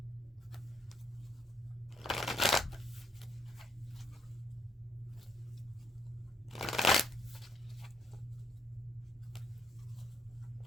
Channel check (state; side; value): normal; both; correlation 0.72